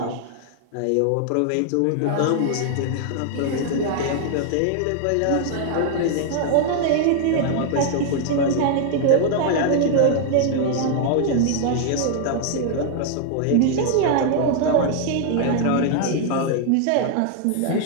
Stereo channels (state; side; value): different; both; correlation -0.01